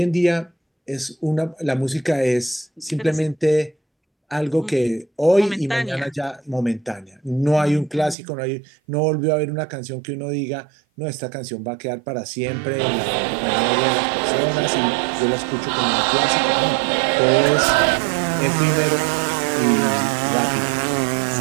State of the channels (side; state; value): left; drops out; at 8.2 s